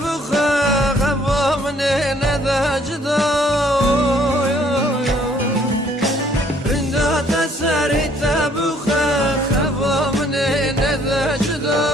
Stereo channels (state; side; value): normal; both; correlation 0.62